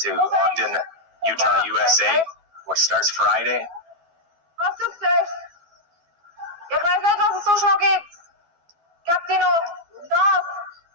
Ogden, Utah, USA, which starts Friday. Was ist das? Ich weiß nicht, was es so schnell geht. Gab die noch das?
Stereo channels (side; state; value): left; late; 12 ms